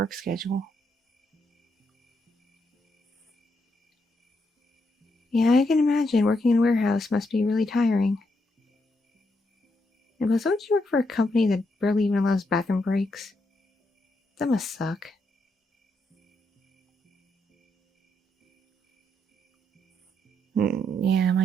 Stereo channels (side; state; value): both; normal; correlation 0.79